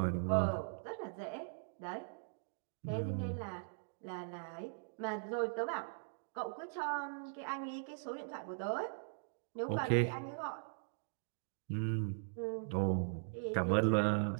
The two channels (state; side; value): silent; left; digital silence